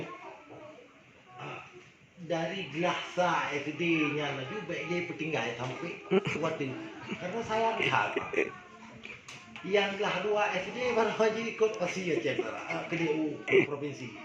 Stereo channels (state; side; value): identical; both; correlation 1.00